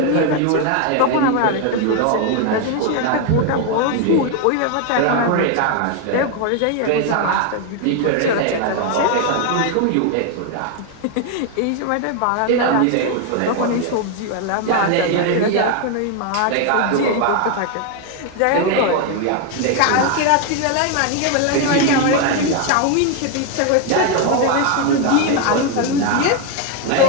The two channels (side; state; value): both; different; correlation 0.01